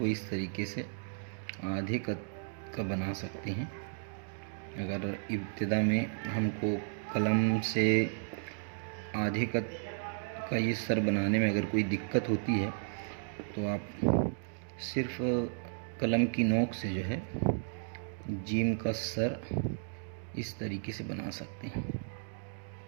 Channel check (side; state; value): left; silent; digital silence